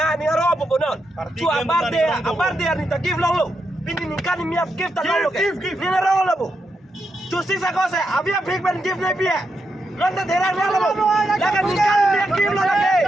ni ngarong bobo non. Tu aparte ni ta give long lo. Pini ni kan mi ap give ta lo. Give ni ngarong lo bo. Tu sisa cosa, avia big man give na pia. Landa terang na lo. Lagan ni kan mi give lo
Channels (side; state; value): both; normal; correlation 0.84